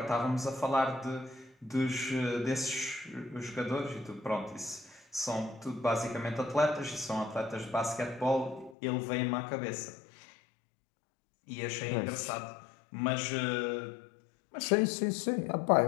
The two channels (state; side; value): drops out; right; at 8.8 s